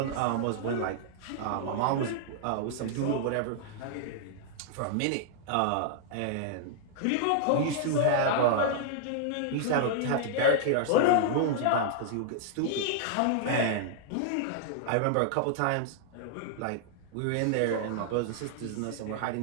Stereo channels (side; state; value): both; different; correlation -0.01